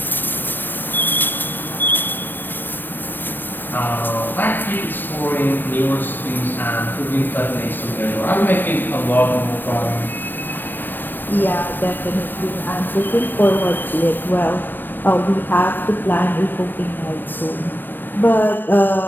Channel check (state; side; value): late; right; 0.092 ms